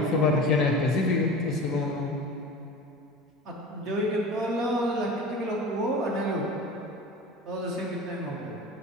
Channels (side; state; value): both; normal; correlation 0.35